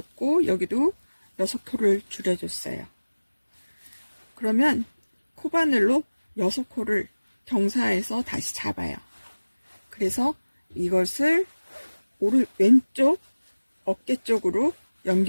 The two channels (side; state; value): both; inverted; correlation -1.00